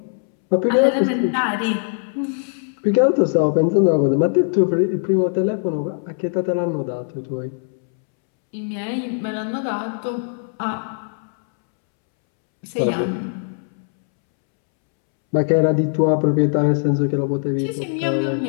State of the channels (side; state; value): right; silent; 65 dB below the other